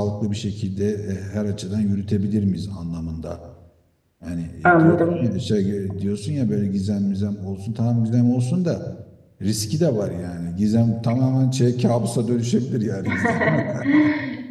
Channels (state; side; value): identical; both; correlation 1.00